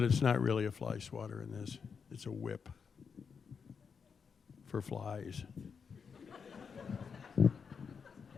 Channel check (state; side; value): quieter; right; 6.1 dB